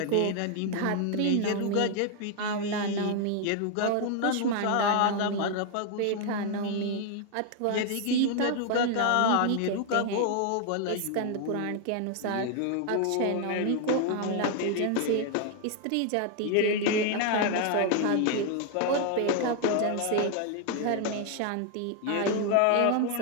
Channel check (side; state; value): both; different; correlation 0.00